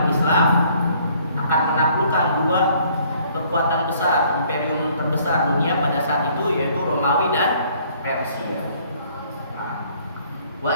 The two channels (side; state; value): both; inverted; correlation -0.60